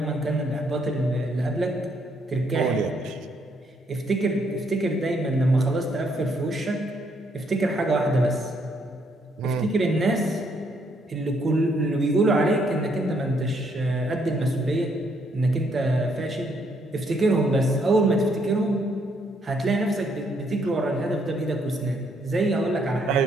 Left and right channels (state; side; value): normal; both; correlation 0.71